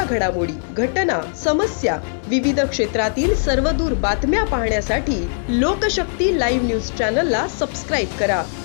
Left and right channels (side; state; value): right; silent; digital silence